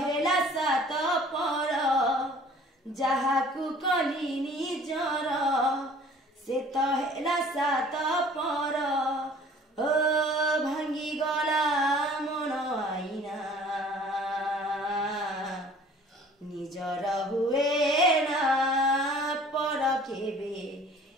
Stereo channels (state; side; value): normal; both; correlation 0.50